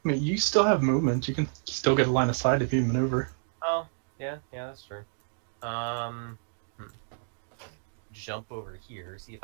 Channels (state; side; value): silent; left; digital silence